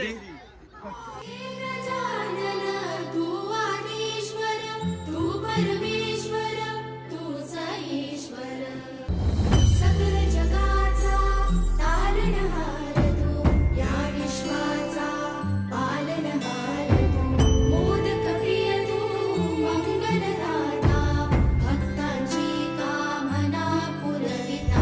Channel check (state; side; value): identical; both; correlation 1.00